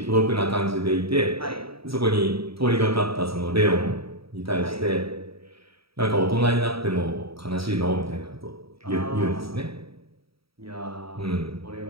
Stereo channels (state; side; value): late; left; 0.76 ms